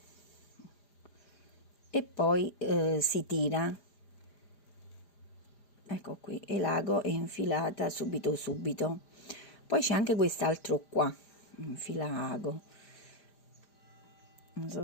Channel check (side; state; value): right; late; 4.9 ms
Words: e poi si tira, ecco qui, e l'ago è infilata subito. Poi c'è anche quest'altro qua, infilago, non